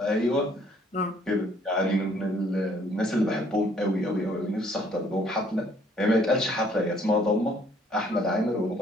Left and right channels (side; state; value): both; normal; correlation 0.62